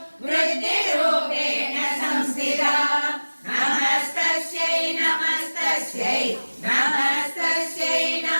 वृद्धिरूपेण संस्थिता नमस्तस्यै नमस्तस्यै नमस्तस्यै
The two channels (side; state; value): both; inverted; correlation -1.00